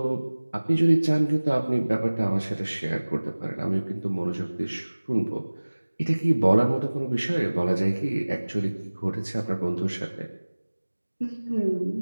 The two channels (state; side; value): inverted; both; correlation -1.00